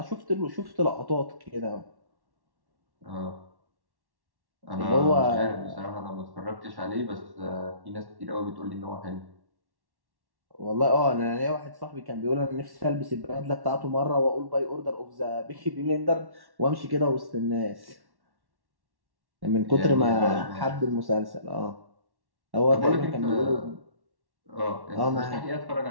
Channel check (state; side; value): late; left; 1.1 ms